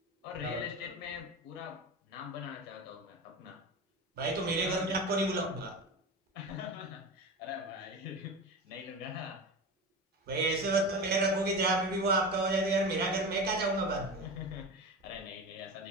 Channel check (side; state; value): both; normal; correlation 0.26